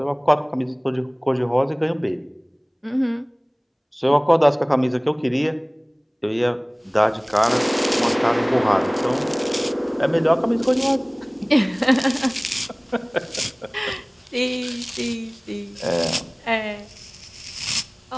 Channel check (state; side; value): identical; both; correlation 1.00